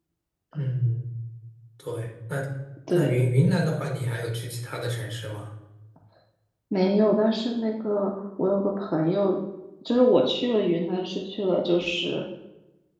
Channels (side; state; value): both; identical; correlation 1.00